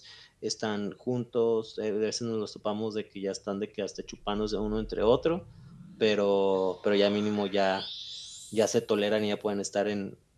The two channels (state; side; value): identical; both; correlation 1.00